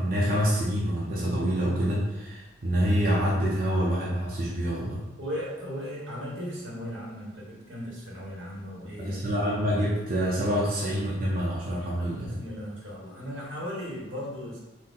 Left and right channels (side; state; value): both; normal; correlation 0.70